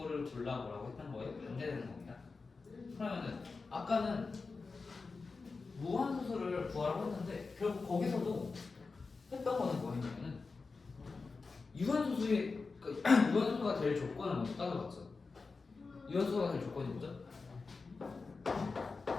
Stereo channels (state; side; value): quieter; right; 4.3 dB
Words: 골라보라고 했던 거에 반대되는 겁니다. 그러면은 아까는 무한소수를 구하라고 했는데 결국 거기서도 했던 거는 뭐였냐면은 유한소수의 유한소수가 될 조건을 먼저 따져봤죠. 유한소수가 될 조건이 뭐죠?